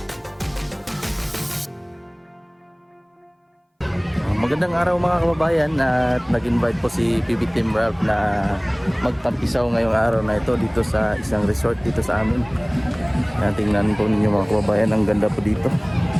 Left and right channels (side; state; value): both; identical; correlation 1.00